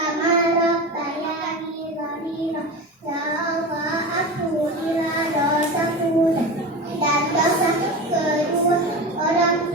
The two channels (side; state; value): both; normal; correlation 0.27